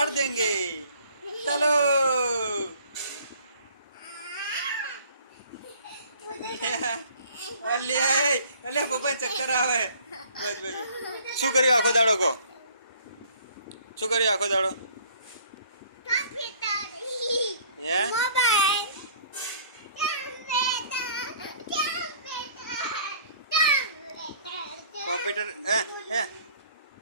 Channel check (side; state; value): both; inverted; correlation -0.55